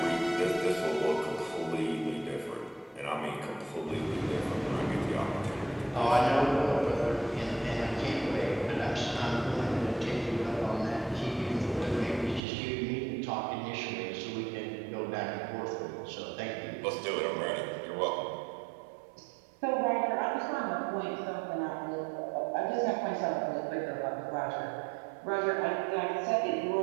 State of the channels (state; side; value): drops out; left; at 12.4 s